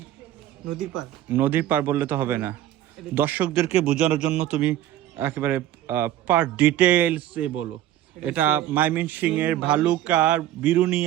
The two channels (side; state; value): left; quieter; 12.8 dB